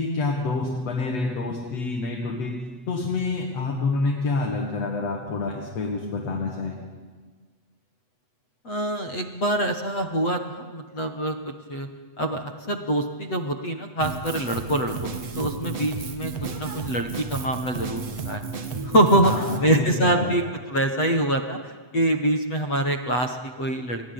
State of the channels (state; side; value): late; right; 8.0 ms